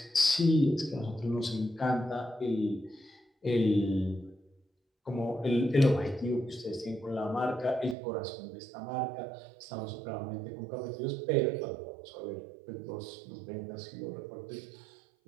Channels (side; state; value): left; drops out; at 8.0 s